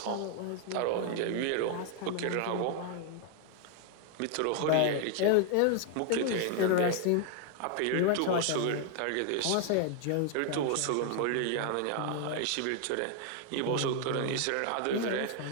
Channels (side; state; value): both; different; correlation 0.00